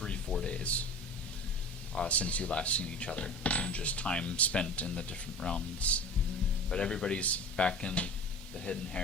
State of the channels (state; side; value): normal; both; correlation 0.36